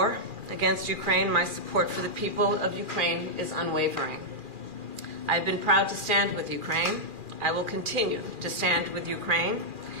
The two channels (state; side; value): late; left; 2.4 ms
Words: against Ukraine, my support for the people of Ukraine is unwavering. I have been proud to stand with Ukraine. I will continue to stand with Ukraine,